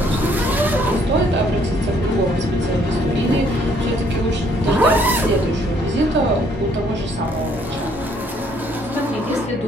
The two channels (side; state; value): both; normal; correlation 0.65